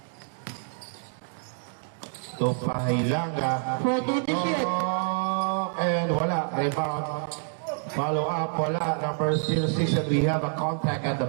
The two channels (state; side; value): silent; left; 60 dB below the other